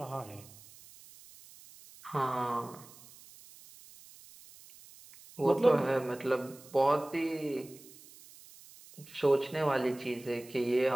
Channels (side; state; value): right; noise; hiss, 21 dB below the sound